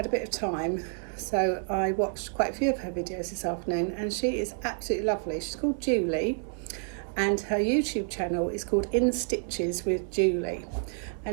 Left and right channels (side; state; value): left; silent; 59 dB below the other